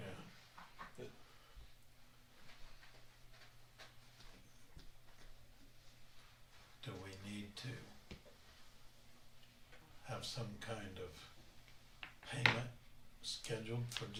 Do we need to have some kind of payment scheduled for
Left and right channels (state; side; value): identical; both; correlation 1.00